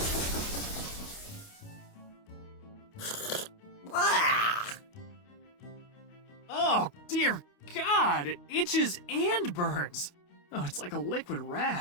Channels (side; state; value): right; late; 29 ms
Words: Oh, dear God, it itches and burns. Oh, it's like a liquid